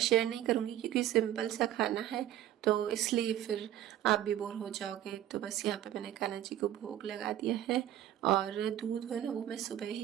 नहीं करूँगी क्योंकि सिंपल सा खाना है, तो इसलिए फिर आप भी बोर हो जाओगे। तो बस यहाँ पे मैंने कान्हा जी को भोग लगा दिया है। और दूध है ना, वो मैं सुबह ही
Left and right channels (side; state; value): left; quieter; 12.3 dB